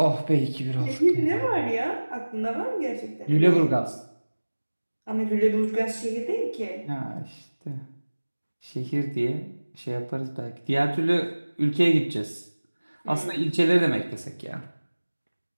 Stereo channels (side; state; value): both; inverted; correlation -1.00